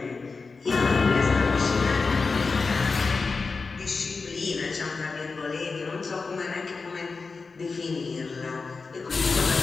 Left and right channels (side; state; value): right; quieter; 4.4 dB